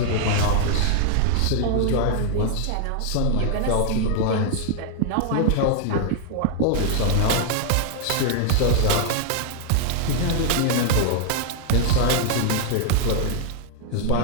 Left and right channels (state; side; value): different; both; correlation 0.00